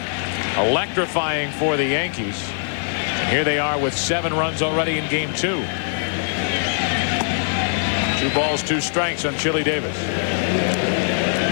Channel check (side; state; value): right; silent; digital silence